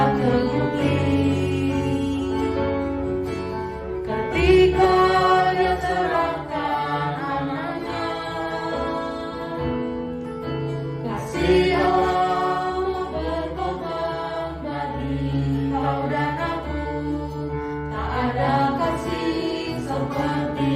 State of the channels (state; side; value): identical; both; correlation 1.00